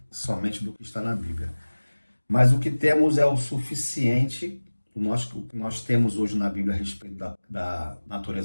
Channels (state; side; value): inverted; both; correlation -1.00